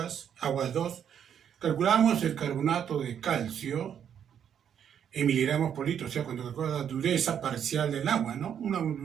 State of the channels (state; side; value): quieter; left; 8.7 dB